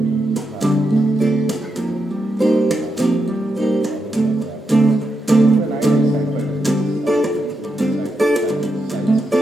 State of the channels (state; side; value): normal; both; correlation 0.84